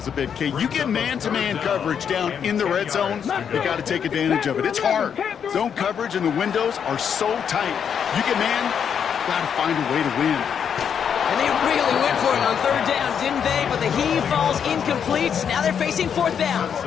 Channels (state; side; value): quieter; right; 7.7 dB